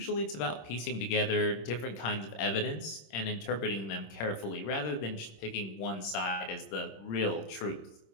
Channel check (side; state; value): right; late; 26 ms